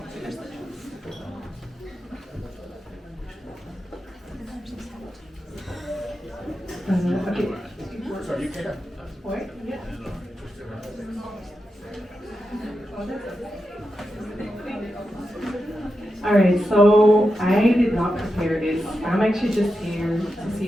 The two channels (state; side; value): normal; both; correlation 0.89